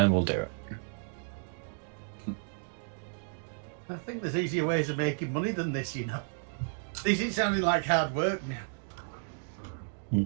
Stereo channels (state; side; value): silent; left; digital silence